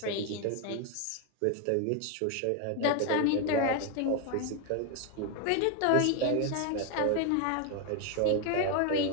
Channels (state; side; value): different; both; correlation 0.01